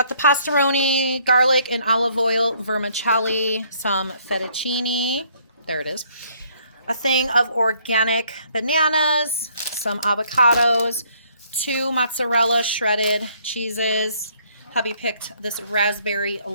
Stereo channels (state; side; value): inverted; both; correlation -0.64